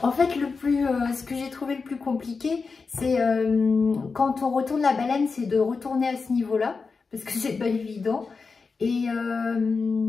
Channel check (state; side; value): quieter; right; 4.7 dB